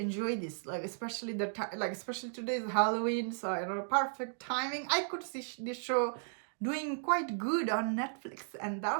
this, like especially especially today's Halloween, so perfect timing. I could see this show doing quite good on Netflix, and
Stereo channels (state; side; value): silent; left; digital silence